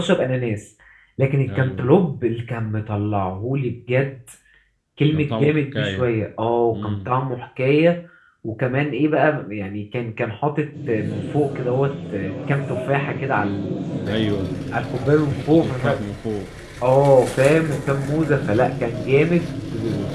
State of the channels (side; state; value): both; identical; correlation 1.00